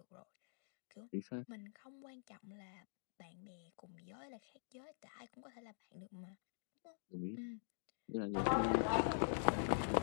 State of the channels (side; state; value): right; silent; digital silence